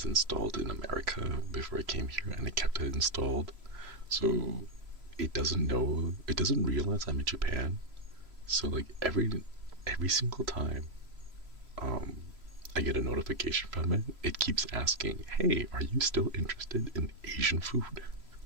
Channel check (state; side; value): late; left; 3.0 ms